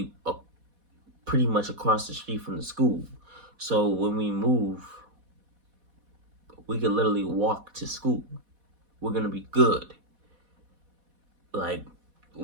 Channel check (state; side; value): late; left; 4.1 ms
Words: pretty much across the street from the school. So when we move, we can literally walk to school. We're gonna be good. Like,